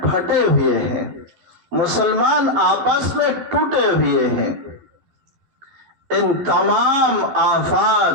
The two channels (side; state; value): left; late; 12 ms